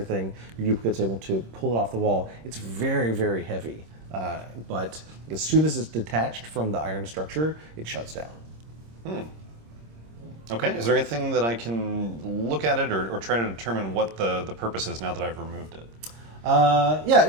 your duplicate's able to pull it off the wall. It's very, very heavy, but as soon as it's detached from the iron structure, it shuts down. Okay, is there anything that I can look at it or try to determine what the purpose is now that I've removed it? Yeah,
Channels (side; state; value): left; late; 26 ms